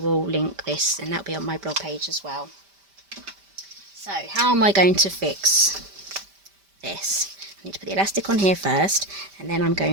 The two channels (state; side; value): late; left; 5.1 ms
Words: link this, and that'll be on my blog page as well. So how am I going to fix this? I need to put the elastic on here first, and then I'm